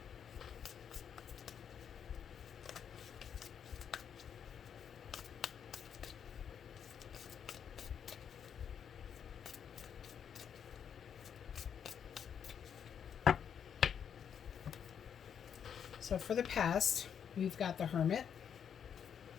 So for the past, we've got the Hermit,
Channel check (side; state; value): right; quieter; 8.0 dB